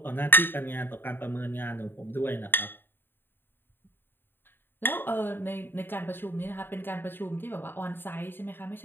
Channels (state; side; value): late; right; 0.098 ms